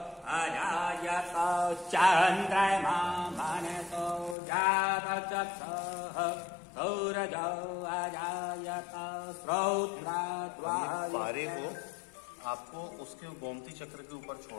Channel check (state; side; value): drops out; right; at 4.4 s